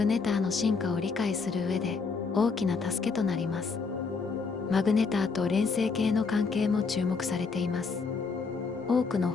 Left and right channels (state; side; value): quieter; right; 4.8 dB